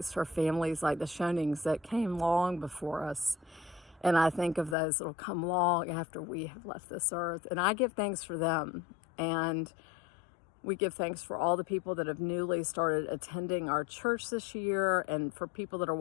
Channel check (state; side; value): drops out; right; at 4.8 s